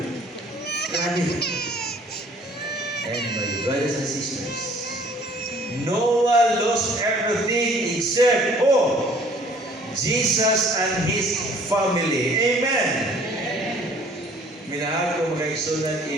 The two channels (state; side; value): normal; both; correlation 0.55